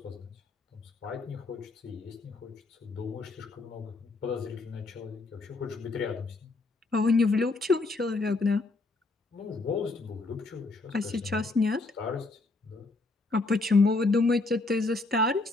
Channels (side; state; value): right; quieter; 3.4 dB